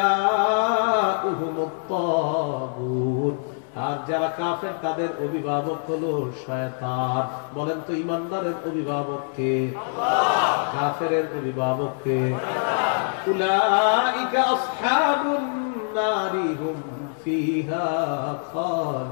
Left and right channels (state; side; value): silent; right; 62 dB below the other